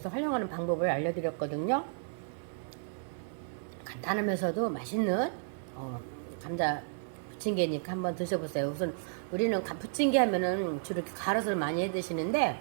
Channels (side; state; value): left; silent; 56 dB below the other